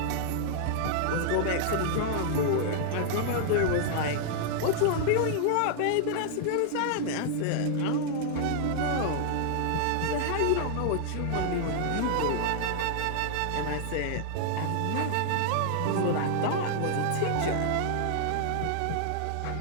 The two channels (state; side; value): different; both; correlation -0.01